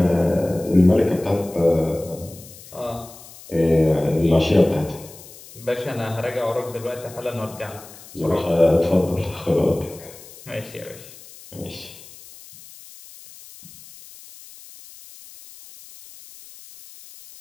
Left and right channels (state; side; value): noise; left; hiss, 19 dB below the sound